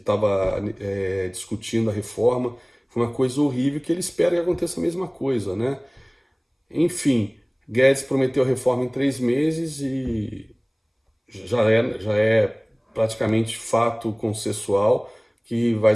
discutindo a reforma. Foi uma coisa horrível que ele espera que aconteça a mesma coisa, né? Enfim, Guedes prometeu a reforma em 3 meses e já é praticamente fato consensual que vai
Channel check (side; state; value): both; identical; correlation 1.00